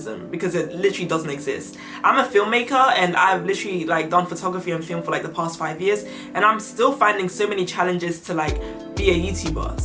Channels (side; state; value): both; identical; correlation 1.00